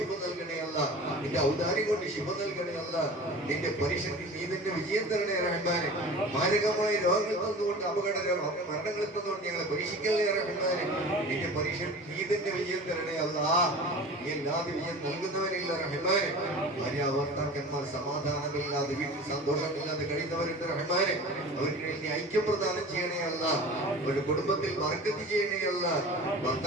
നൽകണേ അല്ല. നിന്റെ ഔദാര്യം കൊണ്ട് ശിഫ നൽകണേ അല്ല. നിന്റെ പരിശുദ്ധി നീ നിന്റെ വിജയം തരണേ റഹ്മാനെ. മാരകമായ രോഗങ്ങൾ തന്നുകൊണ്ട് മരണങ്ങൾ തന്നുകൊണ്ട് ഞങ്ങളെ പരീക്ഷിക്കല്ലേ റഹ്മാനെ. നിന്റെ പരിശുദ്ധി നീ നിന്റെ വിജയം തരണേ അല്ല. നീ അല്ലാതെ വിജയം നൽകുന്നവരില്ല റഹ്മാനെ. ഭാര്യ ഭർത്താക്കന്മാർ സമാധാനമില്ലാതെ വീട്ടിൽ സന്തോഷമില്ലാതെ കഴിയുന്നവരുണ്ട് റഹ്മാനെ. അവർക്കിടയിൽ നീ ഐക്യം പ്രദാനം ചെയ്യണേ അല്ല. അവരുടെ കുടുംബത്തിൽ ബർക്കത്ത് ചെയ്യണേ അല്ല.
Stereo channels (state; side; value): normal; both; correlation 0.37